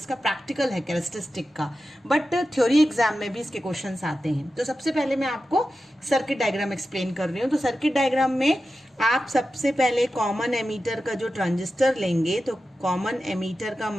प्रैक्टिकल है कैरेक्टरिस्टिक का, बट थ्योरी एग्जाम में भी इसके क्वेश्चंस आते हैं। तो सबसे पहले मैं आपको सर्किट डायग्राम एक्सप्लेन कर रही हूँ। तो सर्किट डायग्राम में आप सबसे पहले कॉमन एमीटर का जो ट्रांजिस्टर लेंगे, तो कॉमन एमीटर का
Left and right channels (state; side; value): normal; both; correlation 0.92